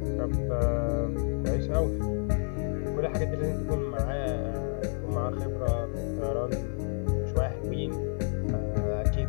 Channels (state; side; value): silent; right; 58 dB below the other